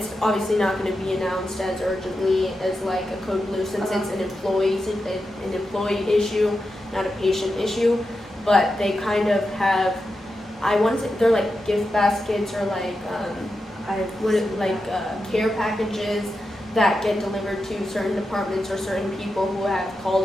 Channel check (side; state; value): both; normal; correlation 0.89